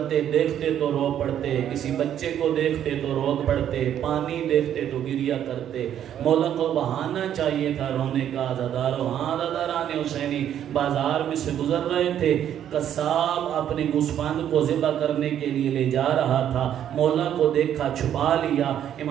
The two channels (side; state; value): left; quieter; 10.2 dB